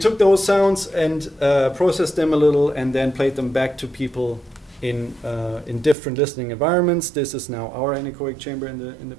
those sounds and processed them a little, and then played them back to people in different listening environments. This is now our anechoic chamber in the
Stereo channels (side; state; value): left; drops out; at 6.0 s